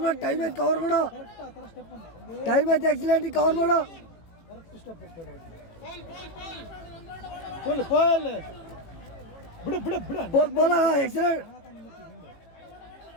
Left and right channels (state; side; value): late; right; 18 ms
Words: ಟೈಮ್ ಐತೆ, ಕವರ್ ಮಾಡು. ಟೈಮ್ ಐತೆ, ಎಕ್ಸಲೆಂಟ್. ಕವರ್ ಮಾಡು. ಕರೆಕ್ಟ್ ಸ್ಟೆಪ್ ಬಿಡು. ಎಕ್ಸಲೆಂಟ್.